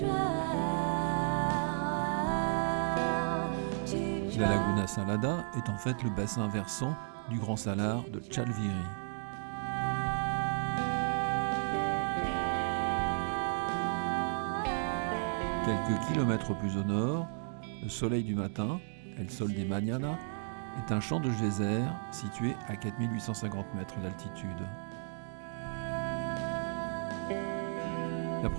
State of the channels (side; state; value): left; silent; digital silence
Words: La Laguna Salada est en fait le bassin versant du Grand Salar de Chalviri. Quelques kilomètres plus au nord, le soleil du matin, El Sol de Mañana, est un champ de geyser situé à 4850 mètres d'altitude. La